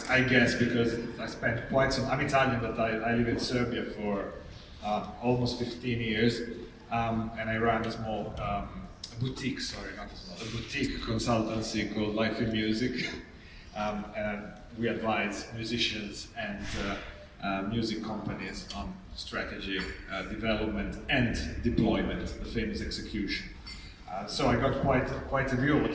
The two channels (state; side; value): identical; both; correlation 1.00